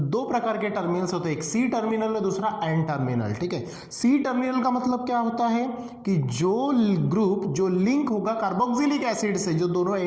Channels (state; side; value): identical; both; correlation 1.00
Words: प्रकार के टर्मिनल्स होते हैं, एक सी टर्मिनल और दूसरा एन टर्मिनल। ठीक है, सी टर्मिनल का मतलब क्या होता है कि जो ग्रुप जो लिंक होगा कार्बोक्सिलिक एसिड से, जो दोनों